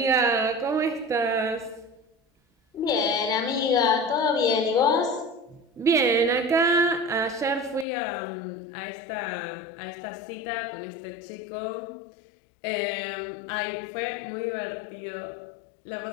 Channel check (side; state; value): right; drops out; at 7.9 s